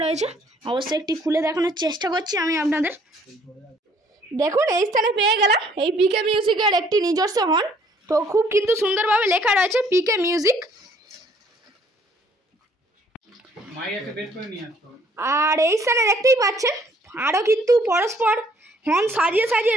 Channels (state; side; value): normal; both; correlation 0.62